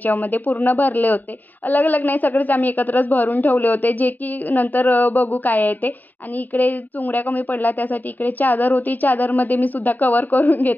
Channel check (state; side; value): late; right; 0.087 ms